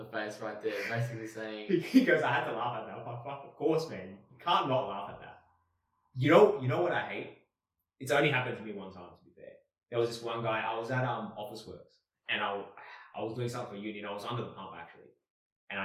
face right there. Basically saying, He goes, I had to laugh at that. I'm like, fuck, of course, man. You can't not laugh at that. You know what I hate? It's only happened to me one time, to be fair. There was this one guy, I was at Office Works, and I was doing something for uni, and I was under the pump, actually. And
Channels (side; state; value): both; identical; correlation 1.00